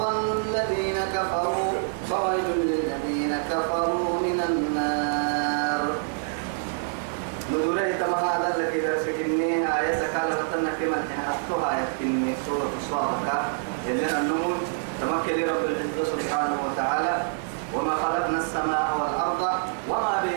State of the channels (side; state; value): left; silent; digital silence